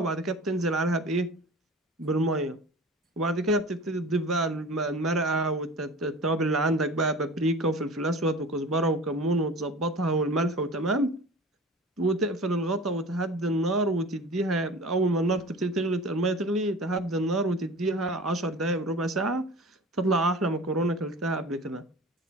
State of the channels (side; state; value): both; normal; correlation 0.38